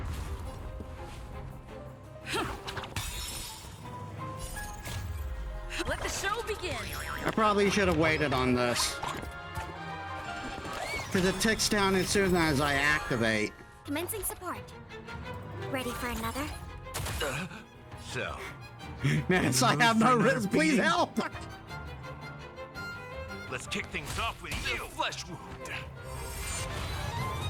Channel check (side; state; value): both; identical; correlation 1.00